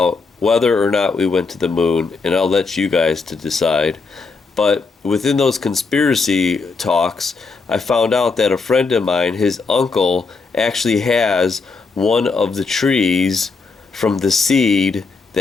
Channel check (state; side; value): quieter; right; 4.4 dB